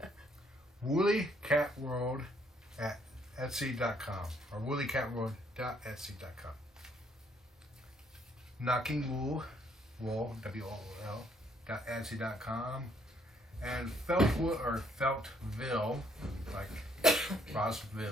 WoollyCatWorld at Etsy.com or WoollyCatWorld.Etsy.com. Knocking Wool, WOOL, .Etsy.com. And Feltwood or Feltville, like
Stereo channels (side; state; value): both; normal; correlation 0.68